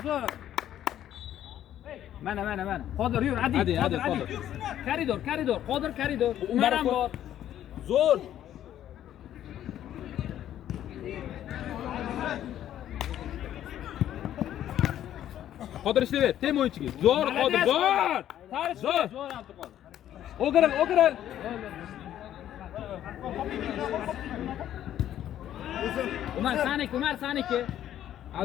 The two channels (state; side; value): quieter; right; 11.5 dB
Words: Zo'r. Mana. Qodir yur, hadi. Qodir. Koridor. Qodir koridor. Umar ham bor. Zo'r. Qodir ishlayver, tem o'yinchiga. Zo'r Qodir, zo'r. Zo'r Abduqodir. O'giril. Umar saniki.